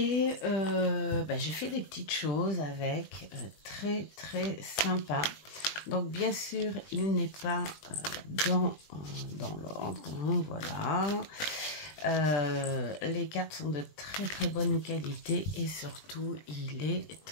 j'ai fait des petites choses avec, très sympa. Donc bien sûr, il n'est pas dans l'ordre, voilà. Les cartes sont de très bonne qualité et surtout, il est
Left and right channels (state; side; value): late; right; 20 ms